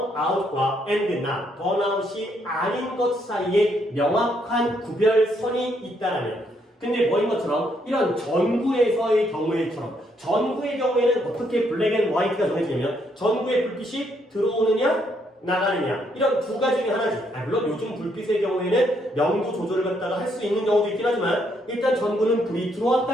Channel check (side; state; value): both; normal; correlation 0.73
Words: and not, 번아웃이 아닌 것 사이에 명확한 구별선이 있다면 근데 뭐인 것처럼 이런 전구에서의 경우에처럼 전구의 경우에는 어떻게 블랙 앤 화이트가 정해지냐면 전구의 불빛이 들어오느냐 나가느냐 이런 두 가지 중에 하나지. 물론 요즘 불빛의 경우에는 명도 조절을 갖다가 할 수 있는 경우도 있긴 하지만 일단 전구는 불이